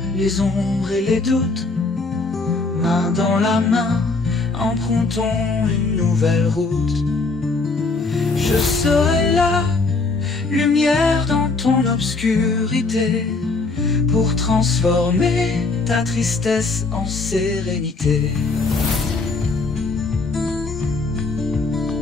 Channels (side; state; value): right; quieter; 3.7 dB